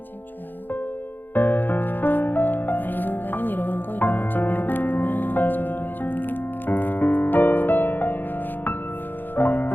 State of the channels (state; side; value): late; right; 0.091 ms